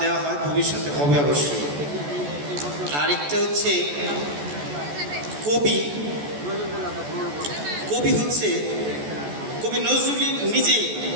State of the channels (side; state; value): left; late; 14 ms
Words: দেওয়া হয়, ভবিষ্যতে হবে অবশ্যই। আরেকটা হচ্ছে কবি হচ্ছে, কবি নজরুল নিজেই